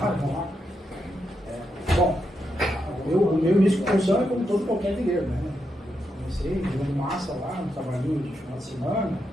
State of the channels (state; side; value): normal; both; correlation 0.83